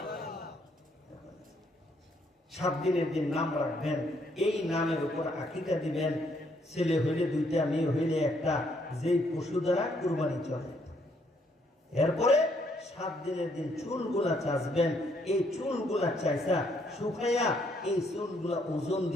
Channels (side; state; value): both; normal; correlation 0.70